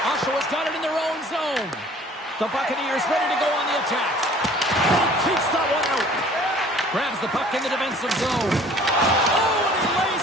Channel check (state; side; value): normal; both; correlation 0.51